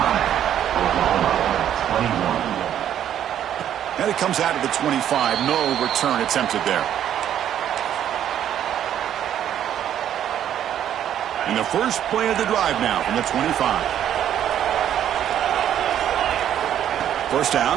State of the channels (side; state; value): left; quieter; 10.4 dB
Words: And it comes out of the 25. No return attempted there. And the first play of the drive now from the 25. First down,